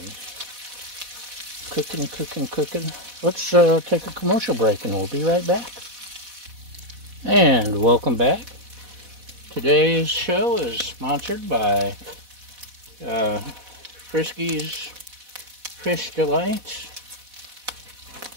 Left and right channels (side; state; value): left; late; 4.1 ms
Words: cooking. Let's take a commercial break and we'll be right back. And welcome back. Today's show is sponsored by Frisky's Fish Delights